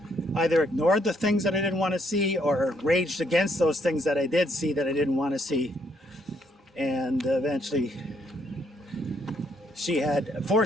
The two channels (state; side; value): normal; both; correlation 0.71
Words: either ignored the things that I didn't want to see, or raged against those things that I did see that I didn't want to see. And eventually she had